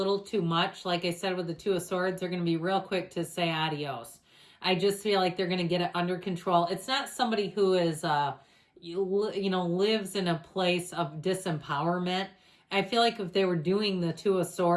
too much, like I said with the Two of Swords, they're going to be real quick to say adios. I just feel like they're going to get it under control. It's not somebody who is, lives in a place of disempowerment. I feel like if they were doing the Two of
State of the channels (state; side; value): identical; both; correlation 1.00